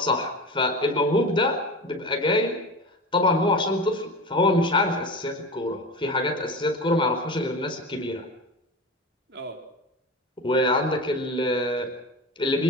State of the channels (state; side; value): normal; both; correlation 0.29